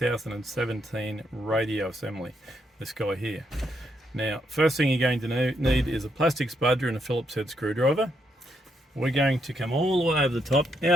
radio assembly, this guy here. Now, first thing you're going to need is a plastic spudger and a Phillips head screwdriver. We're going to come all the way over the top.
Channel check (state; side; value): normal; both; correlation 0.77